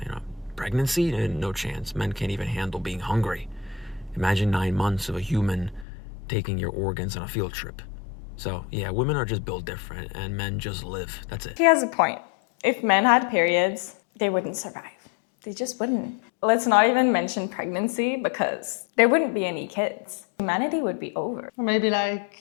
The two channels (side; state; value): right; drops out; at 5.9 s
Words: pregnancy, no chance. Men can't even handle being hungry. Imagine 9 months of a human taking your organs on a field trip. So, yeah, women are just built different and men just live. That's it. He has a point. If men had periods, they wouldn't survive. They just wouldn't. Let's not even mention pregnancy because there wouldn't be any kids. Humanity would be over. Or maybe